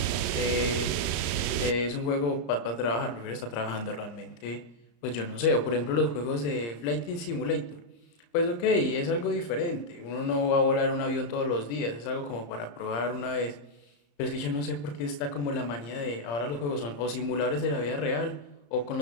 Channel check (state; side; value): late; right; 35 ms